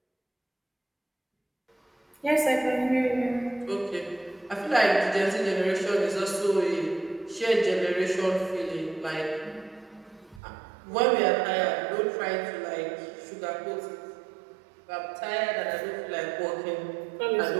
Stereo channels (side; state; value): left; drops out; at 10.4 s